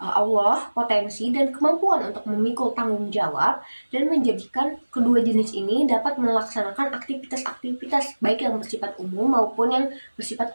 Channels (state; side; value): inverted; both; correlation -1.00